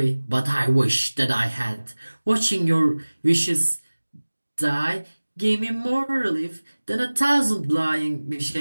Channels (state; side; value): inverted; both; correlation -1.00